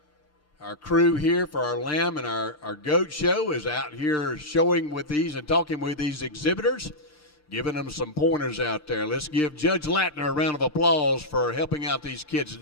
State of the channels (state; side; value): late; right; 6.6 ms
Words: crew here for our lamb and our goat show, is out here showing with these and talking with these exhibitors, giving them some pointers out there. Let's give Judge Latner a round of applause for helping out these kids